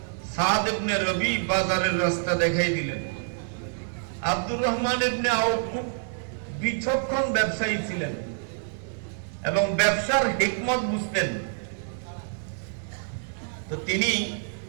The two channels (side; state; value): left; silent; 60 dB below the other